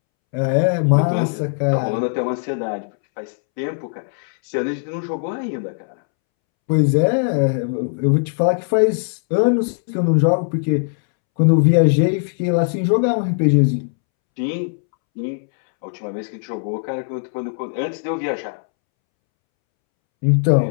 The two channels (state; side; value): silent; right; 66 dB below the other